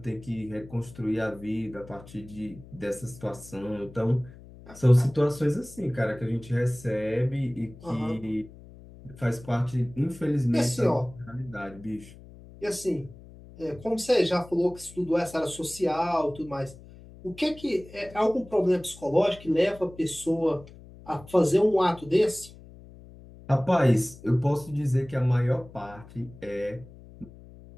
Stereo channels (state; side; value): noise; left; hum, 19 dB below the sound